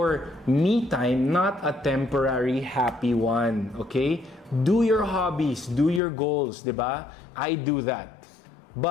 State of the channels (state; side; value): drops out; right; at 6.0 s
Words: me time not a temporary happy one, okay? Do your hobbies, do your goals, diba? I do that.